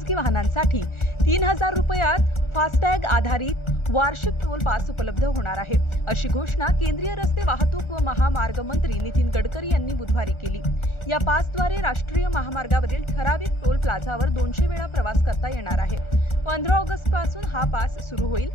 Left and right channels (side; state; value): right; late; 1.4 ms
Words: वाहनांसाठी 3000 रुपयात फास्टॅग आधारित वार्षिक टोल पास उपलब्ध होणार आहे, अशी घोषणा केंद्रीय रस्ते वाहतूक व महामार्ग मंत्री नितीन गडकरी यांनी बुधवारी केली. या पासद्वारे राष्ट्रीय महामार्गावरील ठराविक टोल प्लाझावर 200 वेळा प्रवास करता येणार आहे. 15 ऑगस्ट पासून हा पास सुरू होईल.